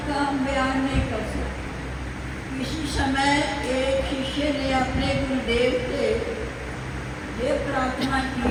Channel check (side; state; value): both; identical; correlation 1.00